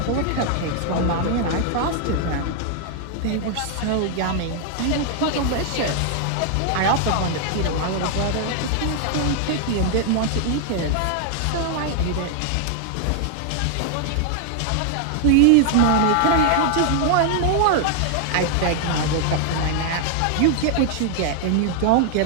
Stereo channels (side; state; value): both; different; correlation 0.00